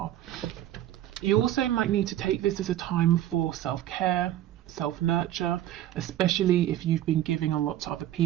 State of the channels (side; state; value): left; quieter; 12.7 dB